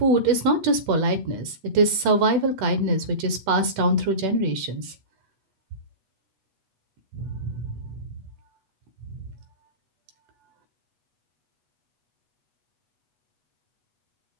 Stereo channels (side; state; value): left; late; 8.2 ms